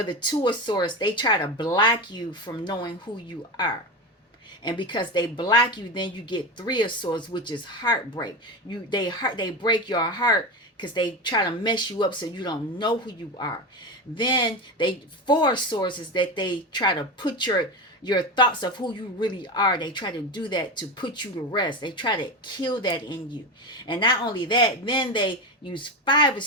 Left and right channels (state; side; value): normal; both; correlation 0.20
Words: the Two of Swords, they try to block you from knowing who you are. And because they block you, then you get Three of Swords, which is heartbreak. They break your heart because they try to mess you up so you don't know who you are. Then Four of Swords is that they try to put your thoughts of who you really are. They try to do that to put you to rest. They try to kill that in you. And not only that, then they use Five of